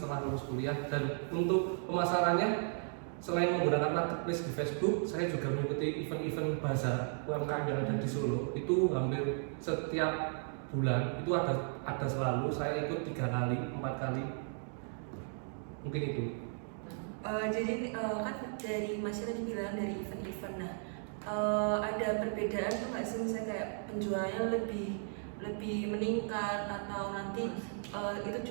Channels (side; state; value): left; silent; 54 dB below the other